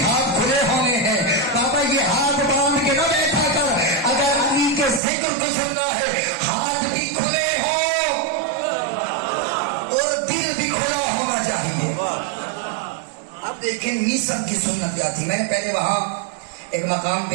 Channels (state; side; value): drops out; left; at 5.0 s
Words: ہاتھ کھلے ہونے ہیں۔ بابا یہ ہاتھ باندھ کے نہ بیٹھا کر، اگر علی کے ذکر کو سننا ہے ہاتھ بھی کھلے ہوں اور دل بھی کھلا ہونا چاہیے۔ اب دیکھیں میسن کی سنت کیا تھی، میں نے پہلے وہاں ایک مقام پہ